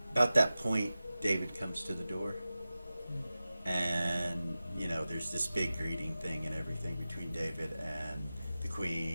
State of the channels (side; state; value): both; inverted; correlation -0.95